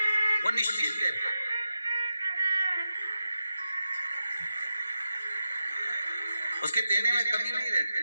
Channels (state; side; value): inverted; both; correlation -0.89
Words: वो निश्चित देता है। उसके देने में कमी नहीं रहती,